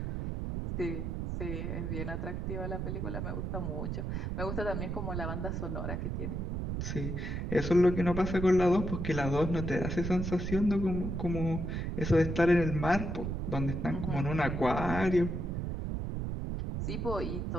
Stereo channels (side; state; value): right; noise; rumble, 3 dB below the sound